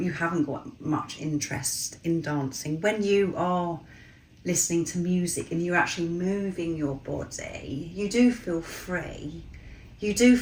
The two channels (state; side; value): identical; both; correlation 1.00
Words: haven't got much interest in dancing, when you are listening to music and you're actually moving your body, you do feel free. You do